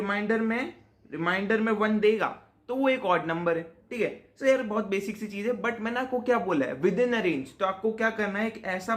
में 1 देगा तो वो एक ऑड नंबर है, ठीक है। सो यार बहुत बेसिक सी चीज है, बट मैंने आपको क्या बोला है? With in a range. तो आपको क्या करना है? एक ऐसा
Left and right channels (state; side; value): identical; both; correlation 1.00